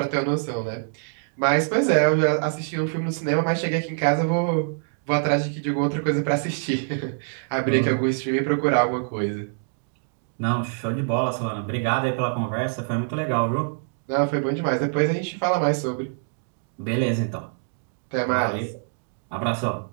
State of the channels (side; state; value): left; silent; digital silence